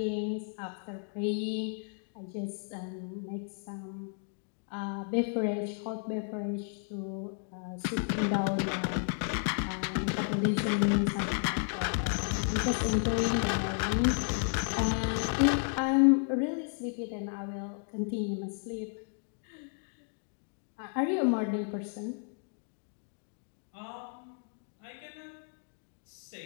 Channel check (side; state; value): right; silent; 56 dB below the other